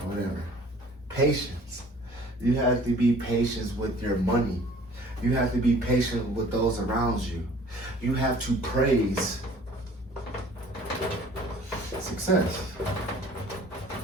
Whatever. Patience. You have to be patient with your money. You have to be patient with those around you. You have to praise success.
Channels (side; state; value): both; normal; correlation 0.51